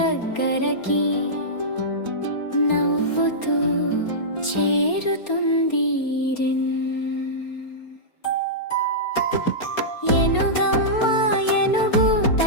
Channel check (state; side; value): late; right; 4.3 ms